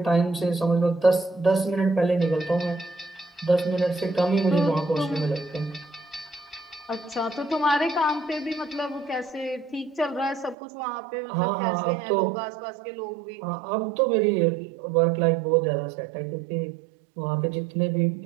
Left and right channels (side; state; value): left; drops out; at 10.6 s